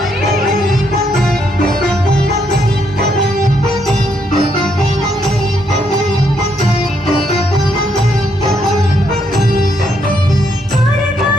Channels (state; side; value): normal; both; correlation 0.74